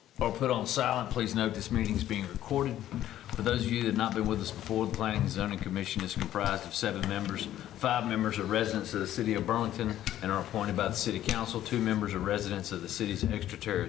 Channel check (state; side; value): quieter; right; 12.5 dB